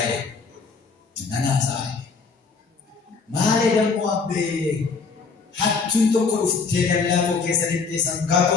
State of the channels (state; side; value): quieter; right; 4.8 dB